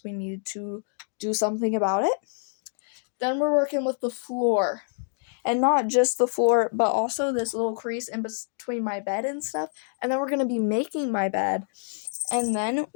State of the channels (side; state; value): right; silent; digital silence